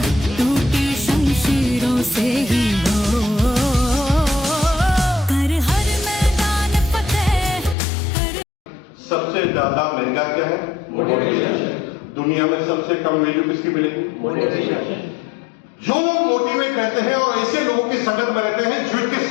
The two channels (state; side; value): drops out; right; at 7.8 s